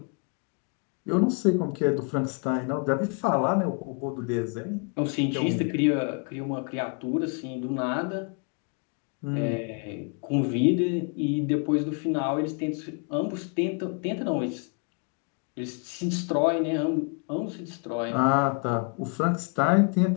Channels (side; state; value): right; quieter; 37.9 dB